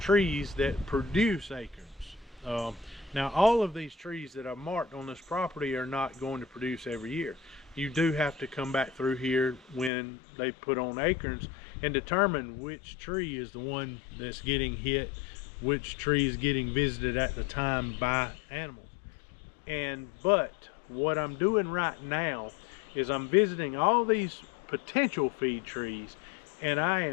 that produce acorns. Now, all of these trees that I've marked on this property are not going to produce every year. You do have to come back through here when they put on acorns and determine which tree is the one that's getting hit, which tree is getting visited at the time by animals. But what I'm doing right now is I'm visiting all these potential feed trees, and I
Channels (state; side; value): drops out; right; at 9.9 s